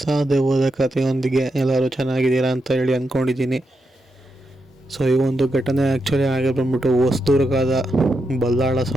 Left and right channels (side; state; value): both; normal; correlation 0.84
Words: ದೆವ್ವದ ಕಥೆಯೊಂದಿಗೆ ಎಲ್ಲರೂ ಚೆನ್ನಾಗಿದ್ದೀರಾ ಅಂತ ಹೇಳಿ ಅಂದ್ಕೊಂಡಿದ್ದೀನಿ. ಸೊ ಈ ಒಂದು ಘಟನೆ ಆ್ಯಕ್ಚುಲಿ ಆಗಿ ಬಂದ್ಬಿಟ್ಟು ಹೊಸದುರ್ಗದ ಬಲ್ಲಾಳ